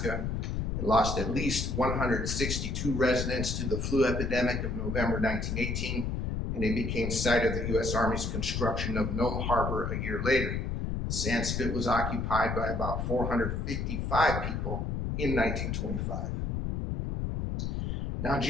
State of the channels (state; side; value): noise; left; rumble, 1 dB below the sound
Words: It lost at least 162 residents to the flu epidemic of November 1918, and it became site of the U.S. Army's construction of Nome Harbor a year later. The sand spit was occupied by about 455 people in 1925. Now, on